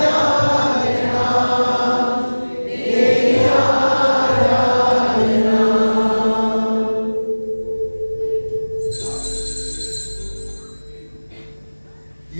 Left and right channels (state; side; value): inverted; both; correlation -1.00